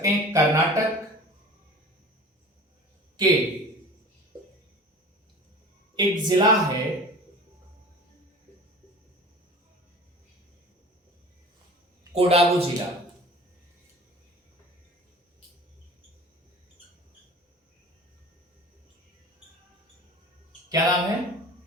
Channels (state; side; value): normal; both; correlation 0.40